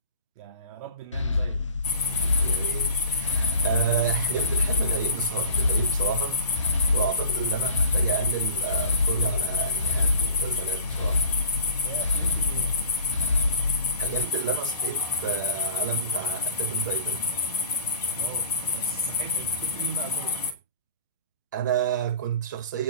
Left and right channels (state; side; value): inverted; both; correlation -0.41